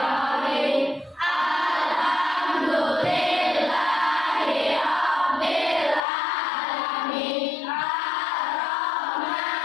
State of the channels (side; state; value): right; drops out; at 6.0 s